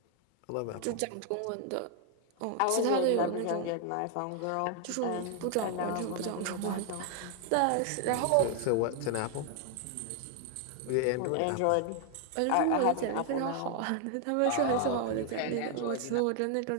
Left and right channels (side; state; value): both; different; correlation 0.00